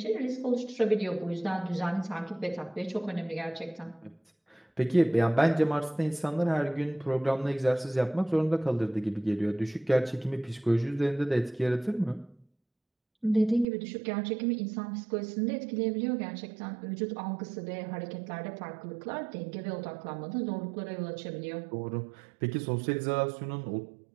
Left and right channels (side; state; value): left; drops out; at 13.7 s